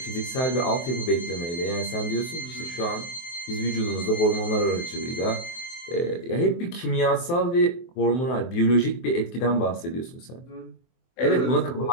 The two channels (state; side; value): late; right; 23 ms